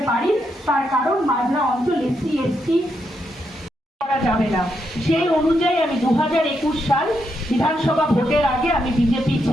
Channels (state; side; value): normal; both; correlation 0.81